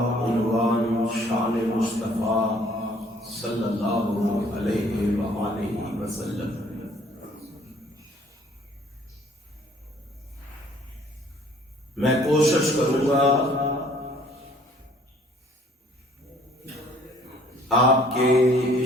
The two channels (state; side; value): normal; both; correlation 0.58